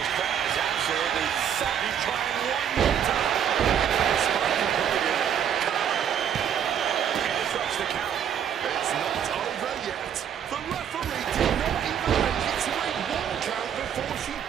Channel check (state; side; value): quieter; left; 8.8 dB